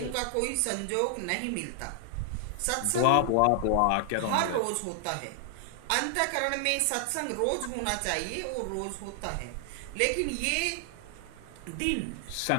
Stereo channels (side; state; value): both; different; correlation 0.00